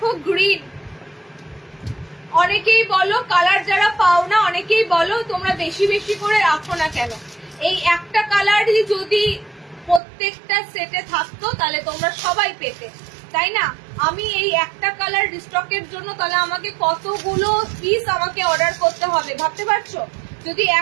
গ্রিন। অনেকেই বলো কালার যারা পাও না, অনেকেই বলো তোমরা বেশি বেশি করে রাখো না কেন, এই একটা কালারই যদি প্রত্যেকটা সেটে থাকতো তাহলে তোমরা সবাই পেতে, তাই না? আমি এই একটা কালার রিস্টকের জন্য তাহলে আমাকে কতগুলো পিস আমাকে অর্ডার করতে হবে ভাবতে পারছো? যদি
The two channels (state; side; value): drops out; left; at 10.0 s